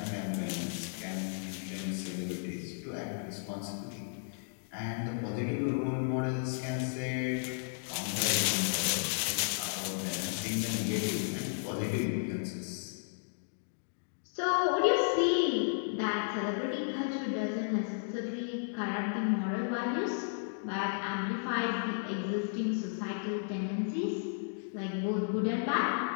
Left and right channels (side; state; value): right; silent; digital silence